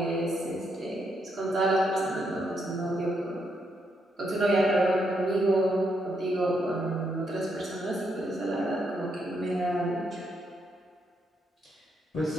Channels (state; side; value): normal; both; correlation 0.78